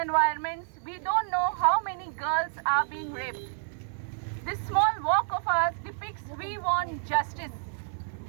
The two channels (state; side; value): silent; left; 58 dB below the other